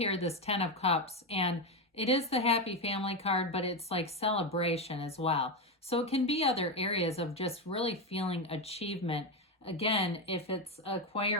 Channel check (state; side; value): normal; both; correlation 0.11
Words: this Ten of Cups, and it is the happy family card, but it's like celebration as well. So it can be other areas of just really feeling achievement. Again, if it's